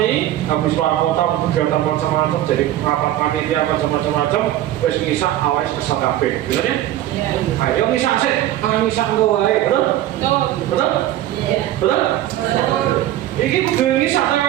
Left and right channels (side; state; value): left; quieter; 13.4 dB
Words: habis luar kota kegiatan macam-macam, jadi rapat panitia macam-macam, wes ngisak awalnya kesel kabeh, bener ya? Ayo ngisak sih, ngisak engko wae, betul? Betul? Betul? Iki kudu ngisak